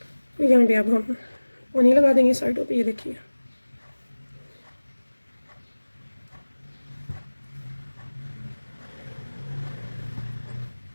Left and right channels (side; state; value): both; inverted; correlation -1.00